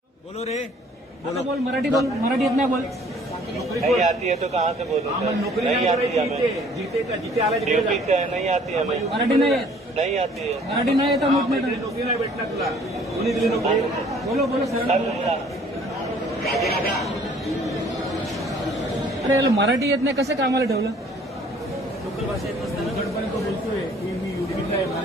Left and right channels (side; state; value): both; normal; correlation 0.56